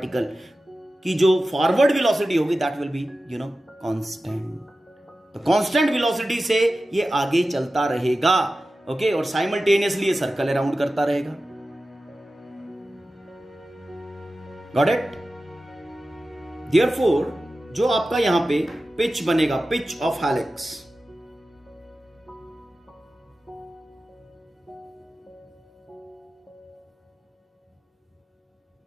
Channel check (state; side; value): normal; both; correlation 0.94